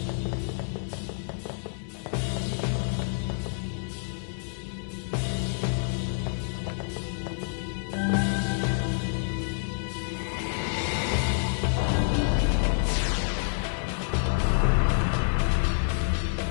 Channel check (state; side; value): silent; right; digital silence